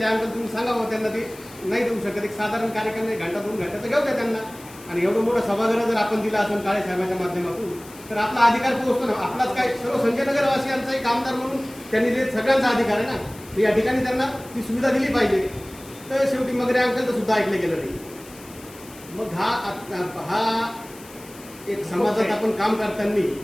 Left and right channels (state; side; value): noise; left; hiss, 20 dB below the sound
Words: अंकल तुम्ही सांगा बाबा त्यांना ते नाही देऊ शकत, एक साधारण कार्यक्रम 1 घंटा 2 घंटा तर घेऊ द्या त्यांना. आणि एवढं मोठं सभागृह जर आपण दिला असेल काळे साहेबांच्या माध्यमातून तर आपला अधिकार पोहोचतो ना. आपलाच काय सर्व संजयनगरवासियांचा एक आमदार म्हणून त्यांनी जे सगळ्यांचा अधिकार आहे ना, या ठिकाणी त्यांना ती सुविधा दिली पाहिजे. तर शेवटी मगरे अंकलचं सुद्धा ऐकलं गेलं नाही. मग हा एक समाजात आपण काम करताना